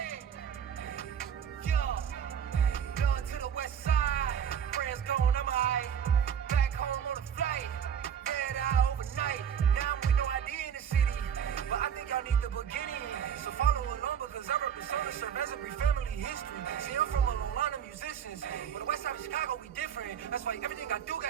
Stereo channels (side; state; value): left; quieter; 8.2 dB